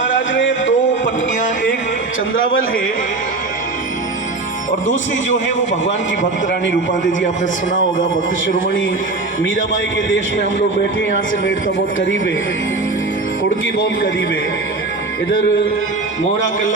ने दो पत्नियां, एक चंद्रावल है और दूसरी जो है वो भगवान की भक्त रानी रूपादेवी जी। आपने सुना होगा, भक्त शिरोमणि मीराबाई के देश में हम लोग बैठे, यहाँ से मेड़ता बहुत करीब है, कुड़की बहुत करीब है, इधर मोहरा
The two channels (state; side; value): quieter; left; 3.5 dB